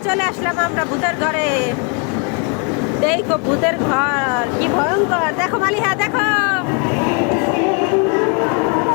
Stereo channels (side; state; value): right; quieter; 37.4 dB